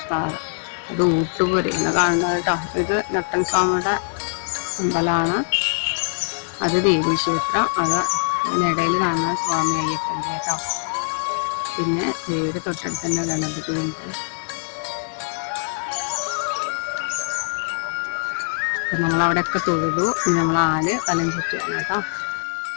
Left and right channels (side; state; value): right; silent; 64 dB below the other